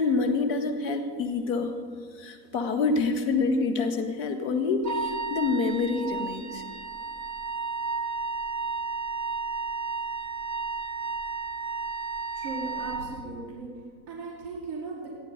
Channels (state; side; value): late; left; 4.0 ms